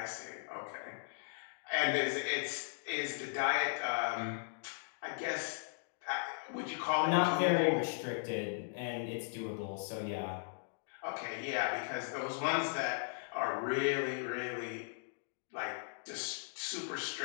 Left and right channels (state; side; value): silent; right; digital silence